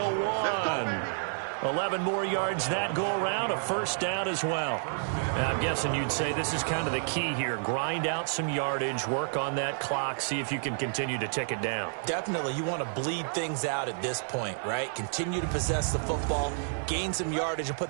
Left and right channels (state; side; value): silent; left; 58 dB below the other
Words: 1. 11 more yards that go around, a first down as well. Now, I'm guessing you'd say this is kind of the key here. Grind out some yardage, work on that clock, see if you can continue to tick it down. Definitely, you want to bleed things out at this point, right? Continue to possess the football, gain some yardage, and put